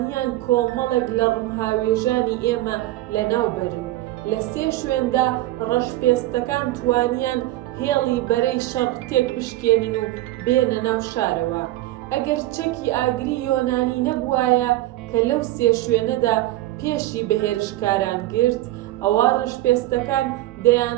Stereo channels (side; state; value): left; quieter; 16.5 dB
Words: کۆمەڵێک لە ڕمهاوێژانی ئێمە لەناوبەرن. لە 3 شوێندا ڕەشپێستەکان توانیان هێڵی بەرەی شەڕ تێک بشکێنن و بێنە ناو شارەوە. ئەگەر چەکی ئاگری یۆنانی نەبوایە کە لەو 3 شوێنەدا پێشی بەهێرشکاران گرت، ئەوە ڕەشپێستەکان